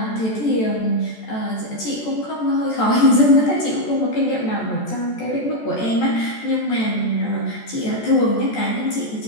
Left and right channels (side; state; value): right; late; 14 ms